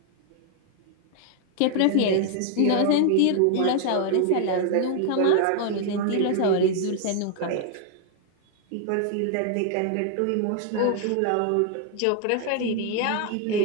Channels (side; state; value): both; different; correlation 0.00